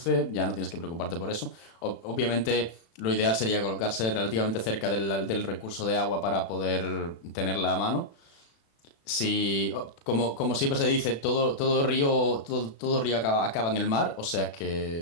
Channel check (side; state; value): right; late; 36 ms